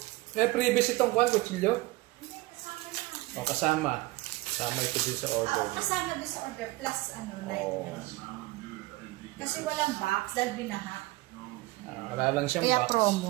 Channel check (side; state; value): left; quieter; 20.8 dB